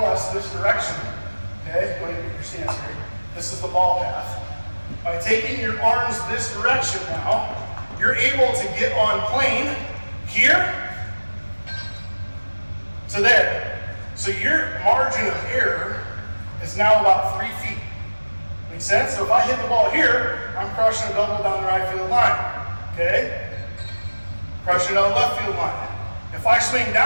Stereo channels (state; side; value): inverted; both; correlation -1.00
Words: this direction, okay, go ahead and get your stance here. This is the ball path. By taking your arms this direction now, you're able to get on plane here to there. So your margin of error is now about 3 feet. Make sense? So if I hit the ball here, I'm crushing a double down the right field line. Okay? Crushing it on the left field line. If I swing